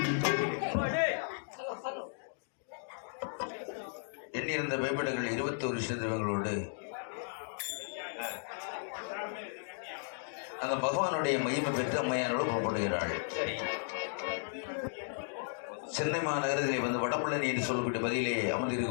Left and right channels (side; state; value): right; silent; digital silence